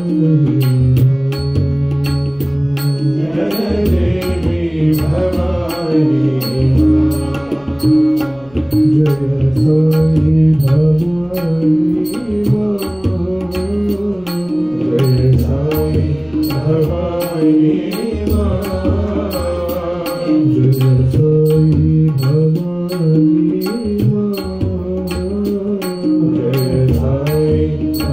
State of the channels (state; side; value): noise; left; rumble, 27 dB below the sound